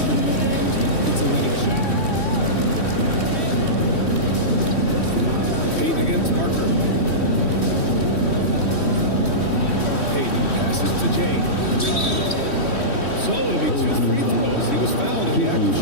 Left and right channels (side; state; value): right; late; 3.1 ms